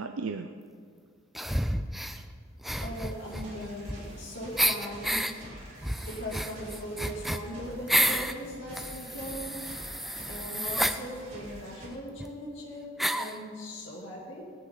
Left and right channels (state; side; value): normal; both; correlation 0.74